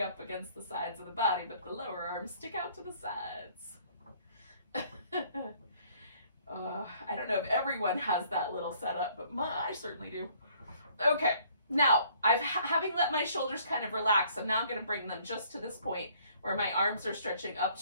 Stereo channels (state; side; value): inverted; both; correlation -0.61